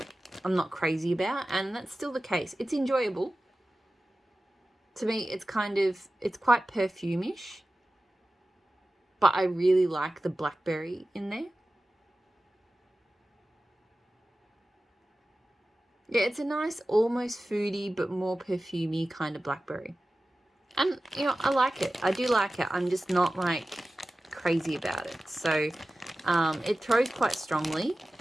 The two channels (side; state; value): both; normal; correlation 0.95